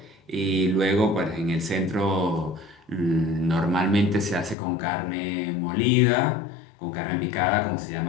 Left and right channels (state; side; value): drops out; right; at 4.5 s